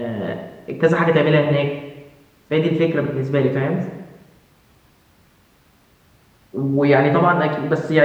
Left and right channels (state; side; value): identical; both; correlation 1.00